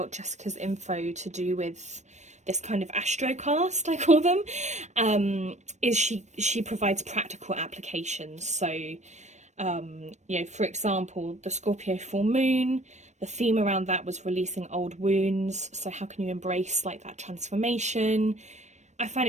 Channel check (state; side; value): late; left; 0.34 ms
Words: Jessica's info to do with this kind of astrocast, I call them, is she provides practical applications. So, you know, for example, the Scorpio full moon, the theme around that was releasing old wounds. So how can you embrace like that transformation? I